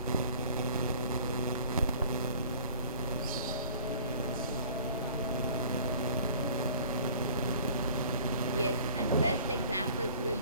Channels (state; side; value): inverted; both; correlation -0.49